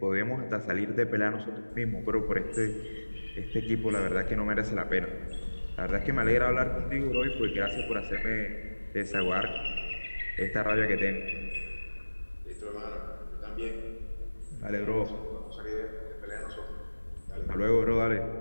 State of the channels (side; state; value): both; inverted; correlation -1.00